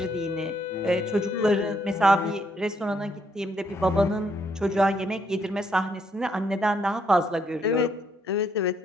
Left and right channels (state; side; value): normal; both; correlation 0.72